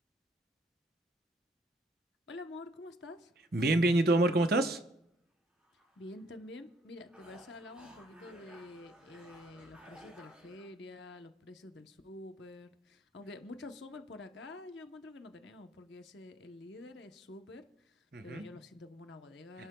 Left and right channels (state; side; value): normal; both; correlation 0.66